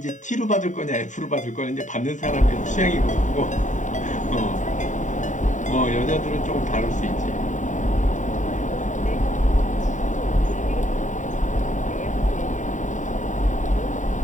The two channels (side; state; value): right; late; 0.36 ms